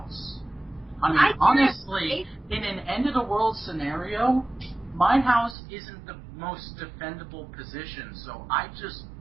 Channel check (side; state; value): left; drops out; at 5.6 s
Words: I mean, honestly, in an end-of-the-world scenario, my house isn't the most defendable position, so